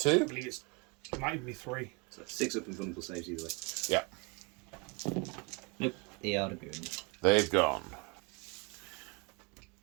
believe it might even be 3. So 6 up and vulnerable saves either way. Yeah. Nope, they are going. They've gone.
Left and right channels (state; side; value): quieter; left; 30.4 dB